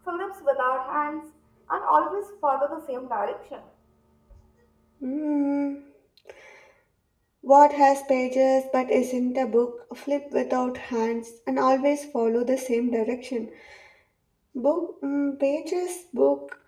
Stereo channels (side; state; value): both; identical; correlation 1.00